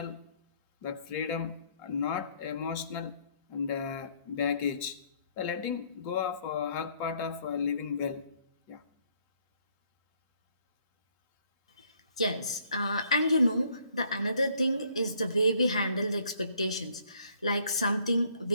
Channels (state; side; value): inverted; both; correlation -0.66